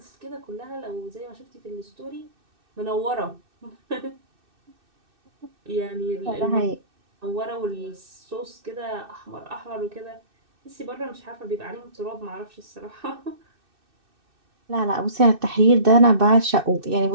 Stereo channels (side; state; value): left; late; 2.6 ms